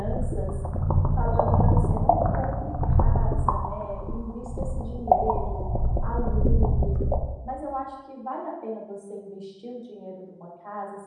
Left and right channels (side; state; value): both; identical; correlation 1.00